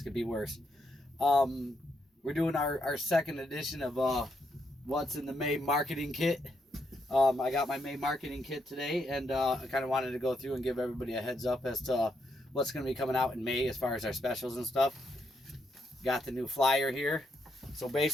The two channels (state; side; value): normal; both; correlation 0.78